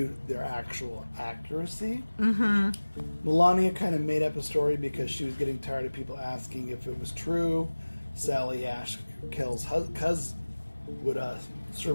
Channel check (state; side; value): inverted; both; correlation -1.00